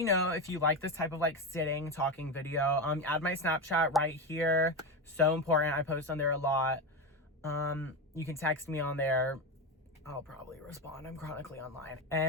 know if you like this type of, like, sitting, talking video. Add my Snapchat right here. So important. I post on there a lot. You can text me on there. I'll probably respond. I'm chronically online.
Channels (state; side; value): normal; both; correlation 0.16